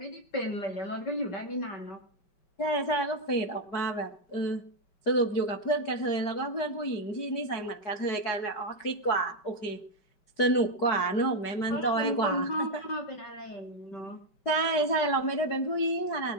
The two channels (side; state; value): right; late; 5.2 ms